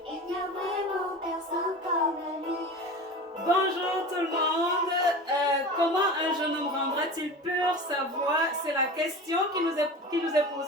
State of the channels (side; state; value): both; normal; correlation 0.33